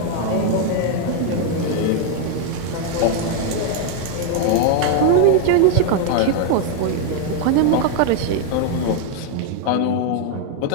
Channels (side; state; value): both; different; correlation 0.01